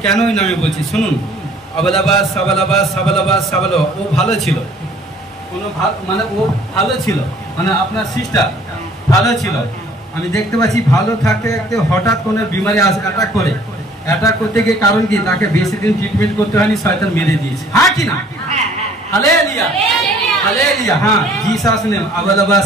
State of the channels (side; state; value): both; normal; correlation 0.55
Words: কেন ওই নামে বলছি, শুনুন। আবালাবাস সাবালাবাস সাবালাবাস সাবালো, ও ভালো ছিল, কোনো মানে ও ভালো ছিল, মানে আপনার সিস্টার ভালো ছিল। আমি দেখতে পাচ্ছি ভালো থাকতে থাকতে হঠাৎ কোনো বিমারি অ্যাটাক করে, অ্যাটাক করতে গিয়ে কারণ কি তাকে বেশি দিন ট্রিটমেন্ট করতে হয়নি, শয়তান মেরে দিয়েছে। হ্যাঁ কি না? Hallelujah hallelujah. হ্যাঁ, জিসাস নেম আবালাবা